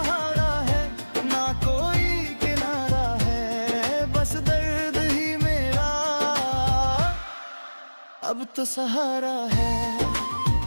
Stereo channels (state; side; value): inverted; both; correlation -1.00